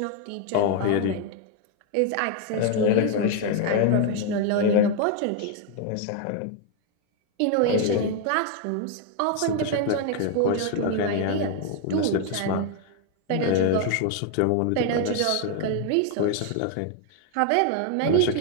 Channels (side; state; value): both; different; correlation 0.00